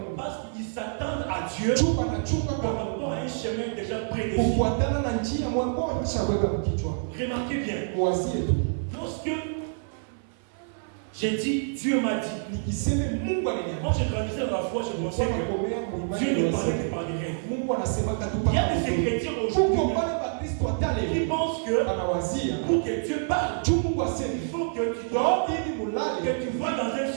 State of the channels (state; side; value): silent; left; 55 dB below the other